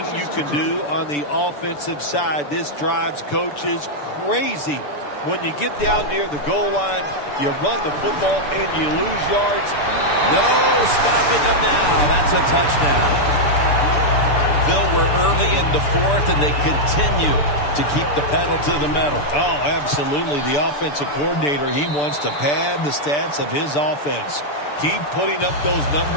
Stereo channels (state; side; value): late; right; 6.9 ms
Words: you can do on the offensive side. This drives coaches crazy. When you get down near the goal line, you run the football and you lose yards. No stopping them now. That's a touchdown. Phil, we're early in the fourth, and they continue to keep the pedal to the metal. Oh, absolutely. The offensive coordinator, he wants to pad the stats of his offense. Keep putting up those